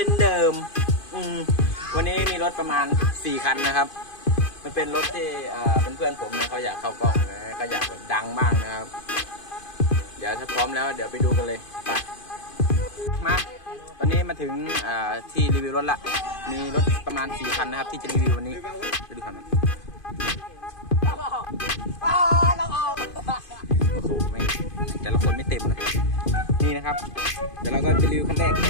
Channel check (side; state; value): right; late; 2.5 ms